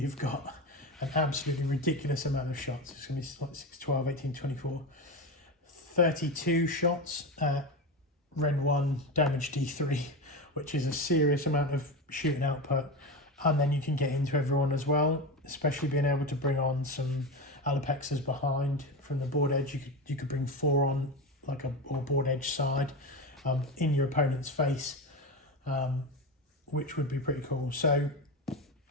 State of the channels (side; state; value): both; normal; correlation 0.21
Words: got an absolutely ridiculous amount of shots. It's going to be like 6, 12, 18, 24, 32 shots at Rend 1 damage D3, which is a serious amount of shooting output. And then you can get into everyone as well, especially being able to bring on some Alopexis behind from the board edge. You could bring 4 on like or board edge side in your opponent's face, which would be pretty cool. So